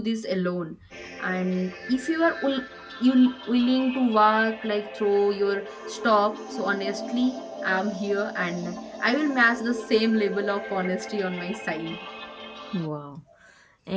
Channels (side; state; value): both; identical; correlation 1.00